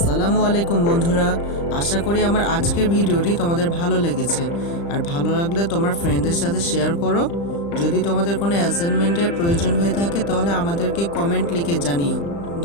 বন্ধুরা, আশা করি আমার আজকের ভিডিওটি তোমাদের ভালো লেগেছে। আর ভালো লাগলে তোমার ফ্রেন্ডদের সাথে শেয়ার করো। যদি তোমাদের কোনো অ্যাসাইনমেন্টের প্রয়োজন হয়ে থাকে তাহলে আমাদেরকে কমেন্ট লিখে জানিও।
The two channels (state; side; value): late; right; 35 ms